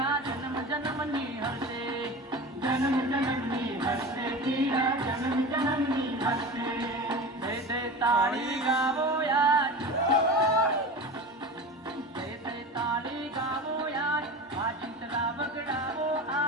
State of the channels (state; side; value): normal; both; correlation 0.31